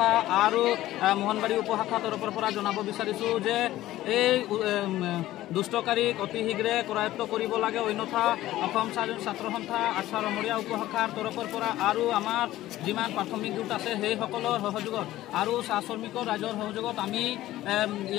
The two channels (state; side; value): quieter; right; 15.1 dB